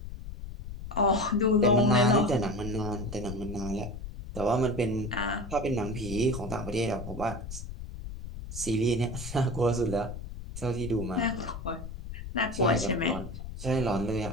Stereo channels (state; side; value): noise; left; rumble, 10 dB below the sound